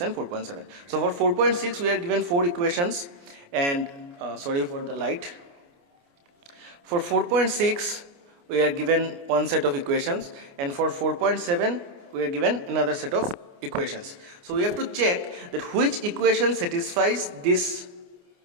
and 4.7. So for 4.6 we are given 4 equations, and sorry for the light. For 4.6 we are given one set of equations, and for 4.7 we are given another set of equations. So we have to check that which equation satisfies this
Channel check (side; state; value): left; late; 29 ms